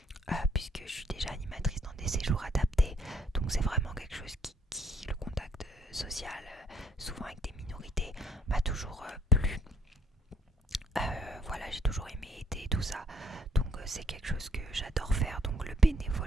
puisque je suis déjà animatrice dans des séjours adaptés, donc c'est vraiment quelque chose qui le contact social, souvent avec des minorités, m'a toujours plu. Voilà, j'ai toujours aimé aider tout ça, donc c'est quelque chose que j'adore faire. Donc le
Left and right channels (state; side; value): normal; both; correlation 0.65